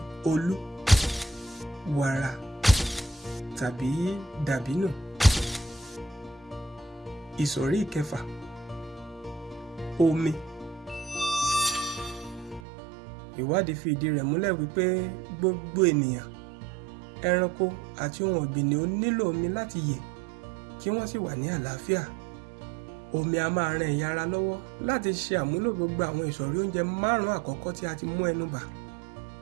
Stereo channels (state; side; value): drops out; left; at 12.6 s